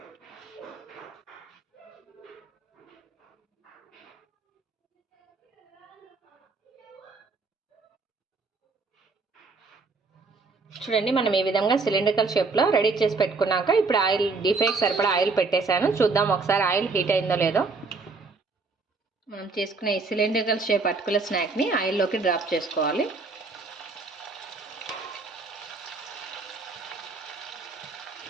చూడండి, మనం ఈ విధంగా సిలిండ్రికల్ షేప్లో రెడీ చేసి పెట్టుకున్నాక ఇప్పుడు ఆయిల్ డీప్ ఫ్రైకి సరిపడా ఆయిల్ పెట్టేశాను. చూద్దాం ఒకసారి ఆయిల్ హీట్ అయిందో లేదో. మనం చేసుకునే ఈ సిలిండ్రికల్ షేప్ అటుకుల స్నాక్ని ఆయిల్లోకి డ్రాప్ చేసుకోవాలి.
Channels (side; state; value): left; quieter; 4.0 dB